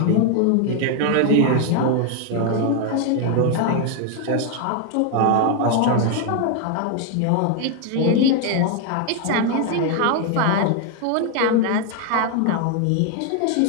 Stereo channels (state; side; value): different; both; correlation 0.01